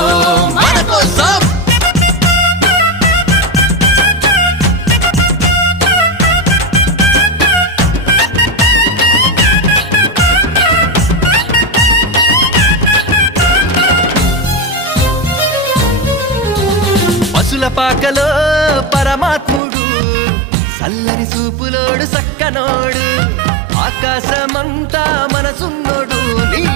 మన కోసం పశుల పాకలో పరమాత్ముడు చల్లని చూపులోడు సక్కనోడు ఆకాశమంతా మనసున్నోడు నీ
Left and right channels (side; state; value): left; drops out; at 19.6 s